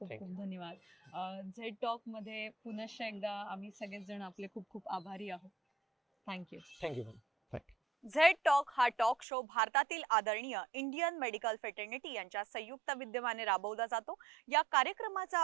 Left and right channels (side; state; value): left; drops out; at 9.2 s